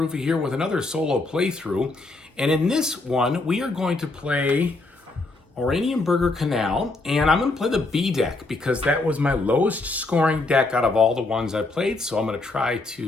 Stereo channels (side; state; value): right; quieter; 3.2 dB